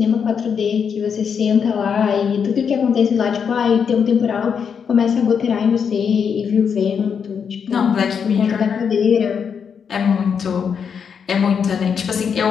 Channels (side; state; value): right; quieter; 6.9 dB